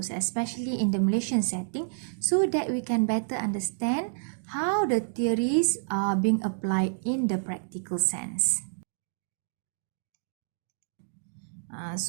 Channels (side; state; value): left; silent; digital silence